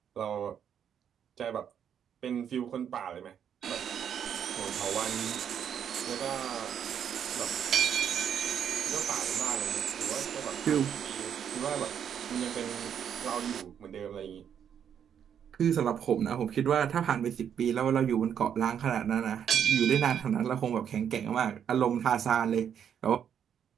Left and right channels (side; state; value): left; quieter; 8.5 dB